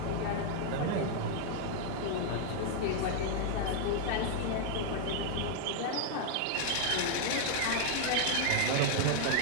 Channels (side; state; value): both; different; correlation 0.00